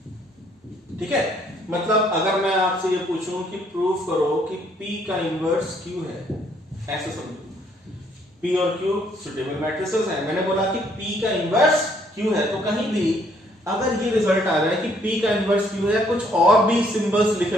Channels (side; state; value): both; normal; correlation 0.66